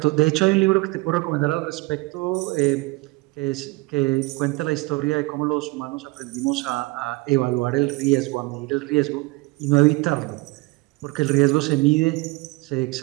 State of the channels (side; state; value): left; quieter; 23.8 dB